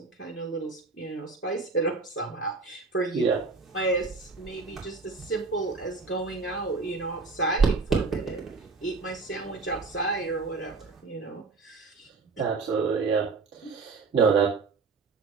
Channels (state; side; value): quieter; left; 4.1 dB